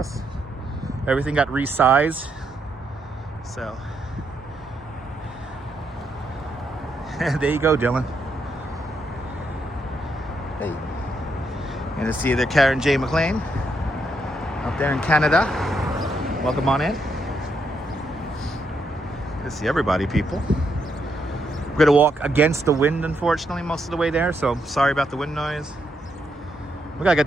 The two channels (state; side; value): normal; both; correlation 0.78